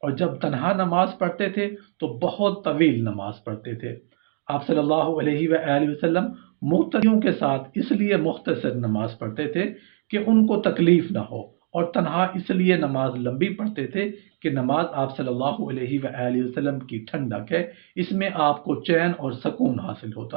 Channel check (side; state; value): left; silent; digital silence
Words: اور جب تنہا نماز پڑھتے تھے تو بہت طویل نماز پڑھتے تھے۔ آپ صلی اللہ علیہ وآلہ وسلم مقتدیوں کے ساتھ اس لیے مختصر نماز پڑھتے تھے کہ ان کو تکلیف نہ ہو، اور تنہا اس لیے نماز لمبی پڑھتے تھے کہ نماز آپ صلی اللہ علیہ وآلہ وسلم کی ٹھنڈک ہے، اس میں آپ کو چین اور سکون حاصل